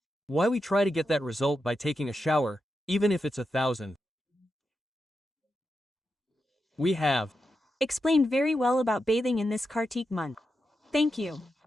why we try to get that result by taking a shower, even if it's 1,000. We have explained very well about bathing in this Kartik month. Thank you.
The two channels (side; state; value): both; normal; correlation 0.87